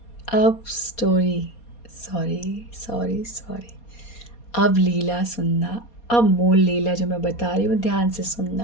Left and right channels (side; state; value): right; late; 4.2 ms